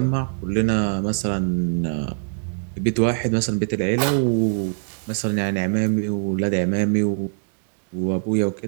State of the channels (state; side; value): silent; left; 64 dB below the other